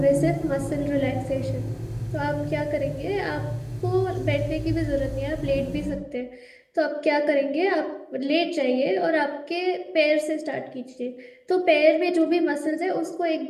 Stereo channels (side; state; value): both; identical; correlation 1.00